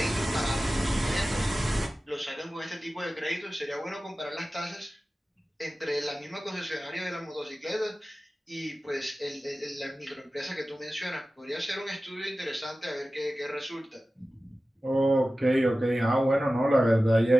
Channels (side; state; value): both; normal; correlation 0.96